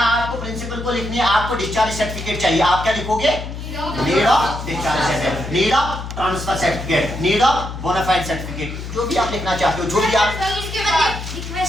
प्रिंसिपल को लिखनी है, आपको डिस्चार्ज सर्टिफिकेट चाहिए, आप क्या लिखोगे, need of discharge certificate, need of transfer certificate, need of bonafide certificate, जो भी आप लिखना चाहते हो, जो भी आप, इसके बाद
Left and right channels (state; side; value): noise; left; hum, 8 dB below the sound